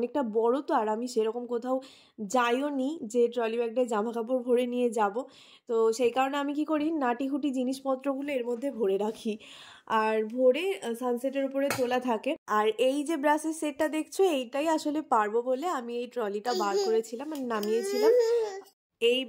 বড় তো, আর আমি সেরকম কোথাও যাইও নি যে ট্রলি ব্যাগটায় জামা কাপড় ভরে নিয়ে যাব। তো সেই কারণে আমি কি করি, নাটিহুটি জিনিসপত্রগুলো এর মধ্যে ভরে রাখি, আর ভরে সানসেটের উপরে তোলা থাকে। আর এই যে ব্রাশের সেটটা দেখছো, এইটাই আসলে পারবো বলে আমি এই ট্রলিটা বার করেছিলাম, মানে নামিয়েছিলাম। এই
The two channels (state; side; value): identical; both; correlation 1.00